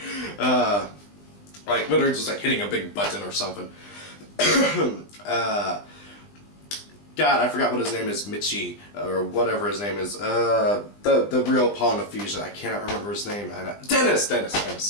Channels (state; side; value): late; right; 20 ms